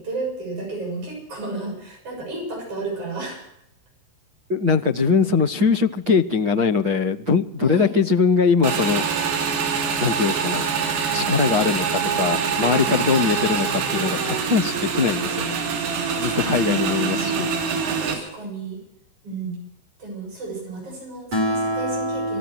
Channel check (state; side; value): late; left; 8.4 ms